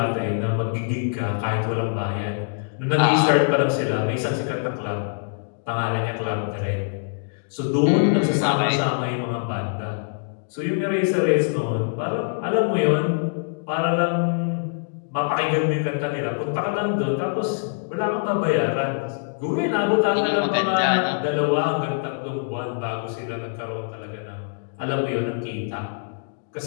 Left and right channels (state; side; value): silent; right; digital silence